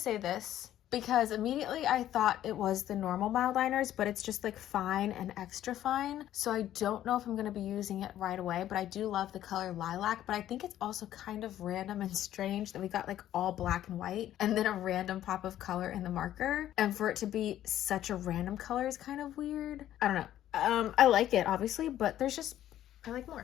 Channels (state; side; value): quieter; right; 12.3 dB